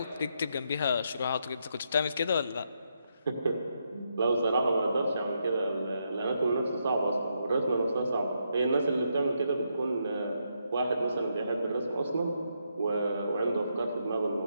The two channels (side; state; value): both; inverted; correlation -0.80